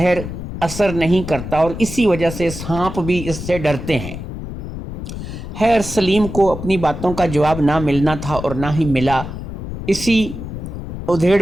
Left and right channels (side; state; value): left; noise; rumble, 8 dB below the sound